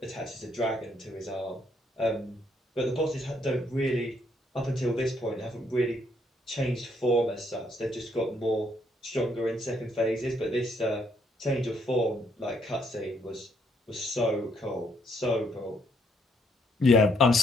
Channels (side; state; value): both; normal; correlation 0.71